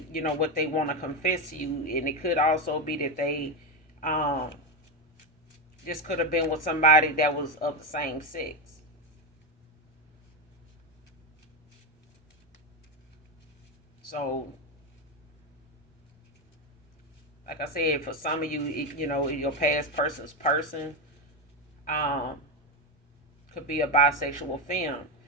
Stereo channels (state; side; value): normal; both; correlation 0.11